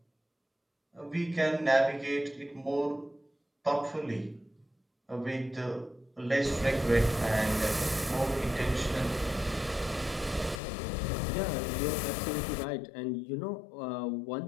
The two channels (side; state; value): right; drops out; at 10.6 s